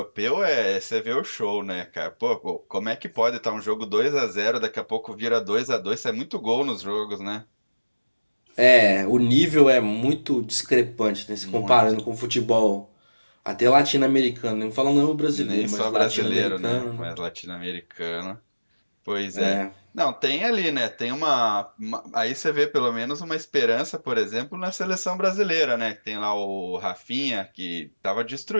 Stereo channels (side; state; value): both; inverted; correlation -1.00